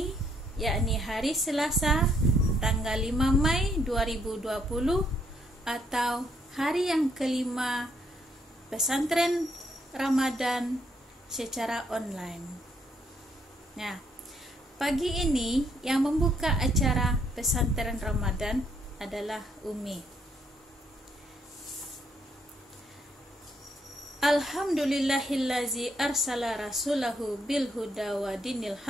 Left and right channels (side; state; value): both; normal; correlation 0.71